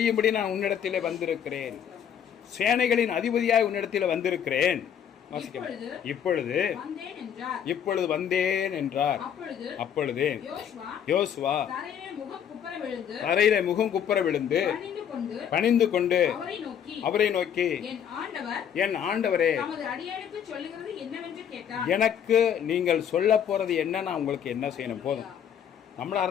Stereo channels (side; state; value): right; quieter; 8.8 dB